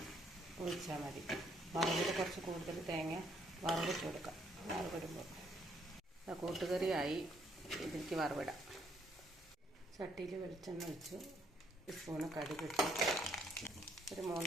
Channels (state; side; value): normal; both; correlation 0.70